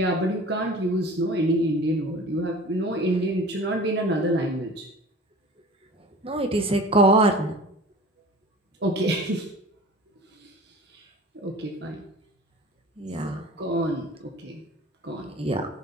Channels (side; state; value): both; normal; correlation 0.41